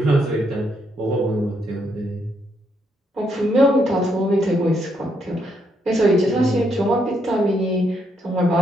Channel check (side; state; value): both; normal; correlation 0.76